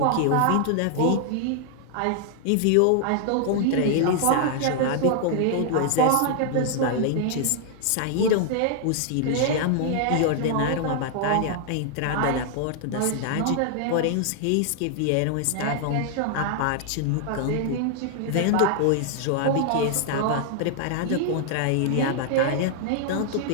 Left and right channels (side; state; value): both; different; correlation 0.00